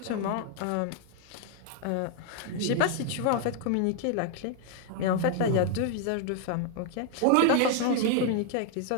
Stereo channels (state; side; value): different; both; correlation 0.00